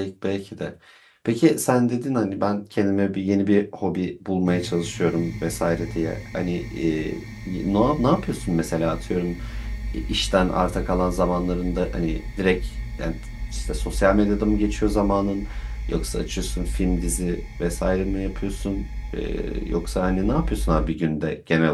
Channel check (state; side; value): identical; both; correlation 1.00